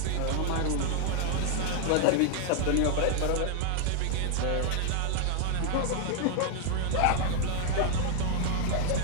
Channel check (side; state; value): both; different; correlation 0.00